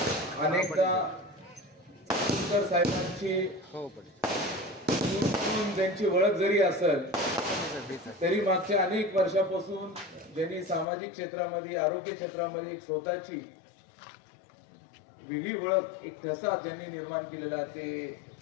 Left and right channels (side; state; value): right; drops out; at 10.9 s